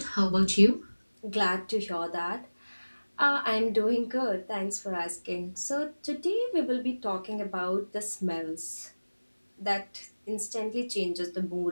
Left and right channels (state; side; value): inverted; both; correlation -1.00